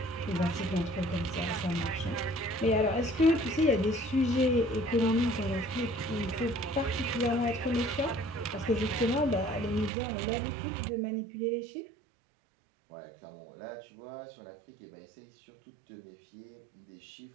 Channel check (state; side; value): drops out; left; at 9.9 s